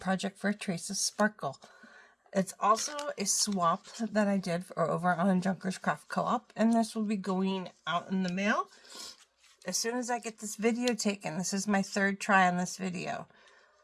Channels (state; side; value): identical; both; correlation 1.00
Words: for Trace's Sparkle. It's also a swap that I did over on Junkers Craft Co-op, and this will be going out in the mail as soon as I get this video taken. This is my third try on this video.